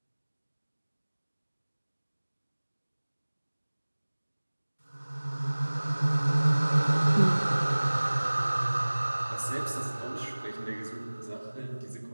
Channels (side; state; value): both; inverted; correlation -1.00